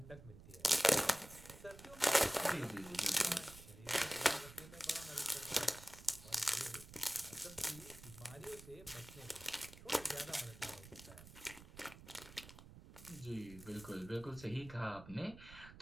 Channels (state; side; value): noise; right; rumble, 17 dB below the sound